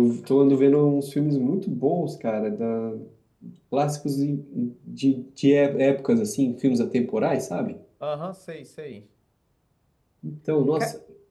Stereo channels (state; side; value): identical; both; correlation 1.00